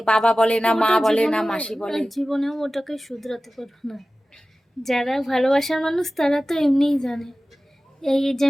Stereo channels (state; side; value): normal; both; correlation 0.96